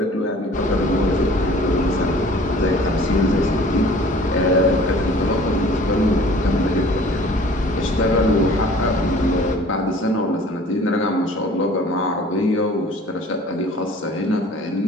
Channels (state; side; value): normal; both; correlation 0.49